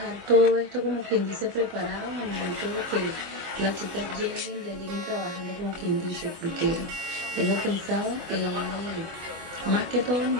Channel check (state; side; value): late; left; 25 ms